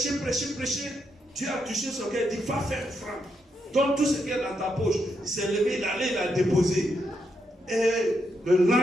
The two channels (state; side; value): normal; both; correlation 0.81